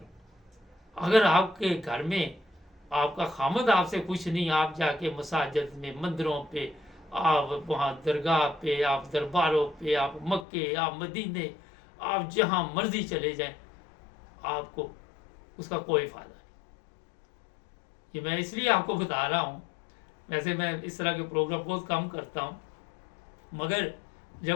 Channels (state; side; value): drops out; right; at 10.5 s